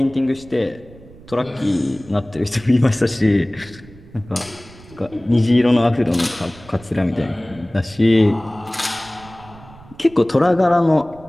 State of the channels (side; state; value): right; noise; rumble, 21 dB below the sound